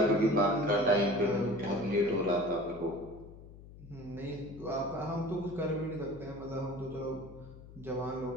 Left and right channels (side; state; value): left; noise; hum, 17 dB below the sound